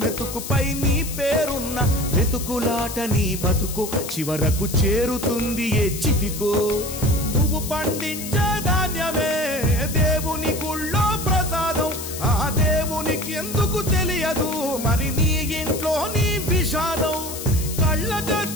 మెతుకుపై నీ పేరున్న వెతుకులాట నీ బతుకు చివరకు చేరుతుంది ఏ చితికో నువ్వు పండించే ధాన్యమే దేవుని గుళ్ళో ప్రసాదం ఆ దేవునికి ఎందుకు తెలియదు మరి నీ ఇంట్లో నీ విషాదం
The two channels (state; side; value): noise; left; hiss, 9 dB below the sound